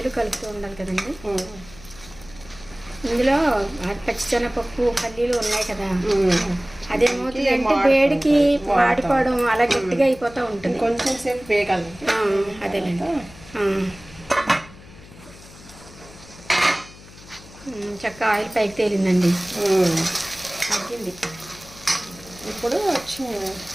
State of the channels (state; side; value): noise; left; hum, 20 dB below the sound